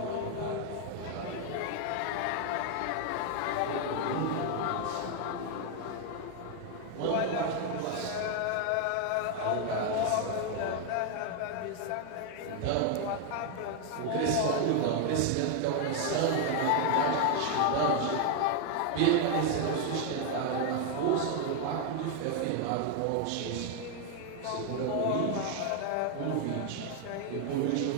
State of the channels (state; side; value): different; both; correlation 0.01